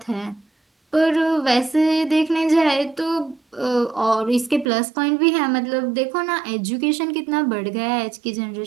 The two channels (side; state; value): left; drops out; at 4.7 s